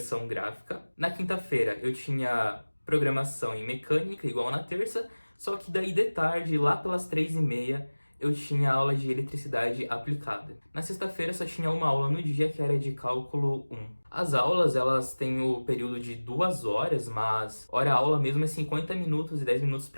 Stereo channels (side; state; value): both; inverted; correlation -1.00